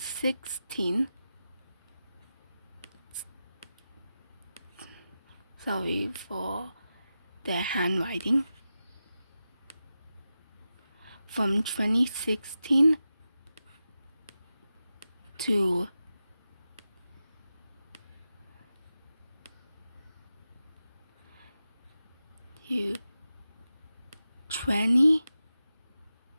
sorry for the handwriting, from 2016 to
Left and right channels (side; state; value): both; inverted; correlation -0.92